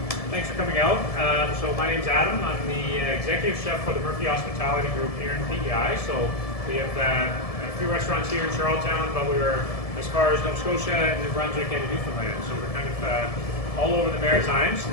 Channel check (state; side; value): late; right; 1.7 ms